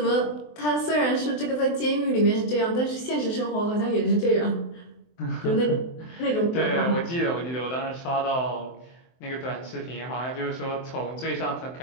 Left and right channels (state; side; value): late; right; 23 ms